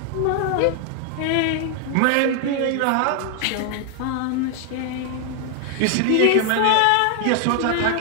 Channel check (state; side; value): different; both; correlation 0.00